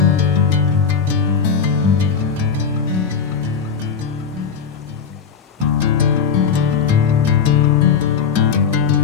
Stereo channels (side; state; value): right; quieter; 6.5 dB